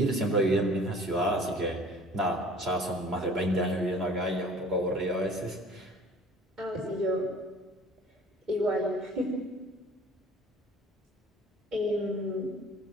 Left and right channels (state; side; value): normal; both; correlation 0.49